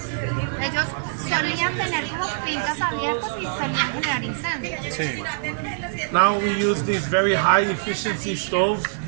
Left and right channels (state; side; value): silent; left; digital silence